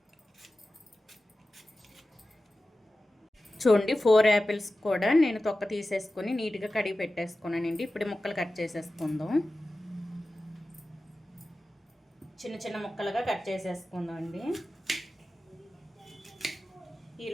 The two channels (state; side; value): normal; both; correlation 0.94